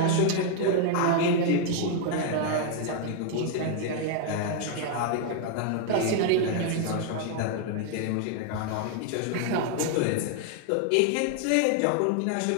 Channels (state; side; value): different; both; correlation 0.00